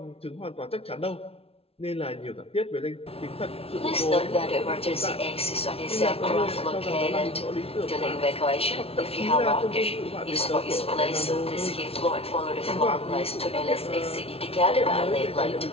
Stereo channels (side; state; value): right; late; 0.28 ms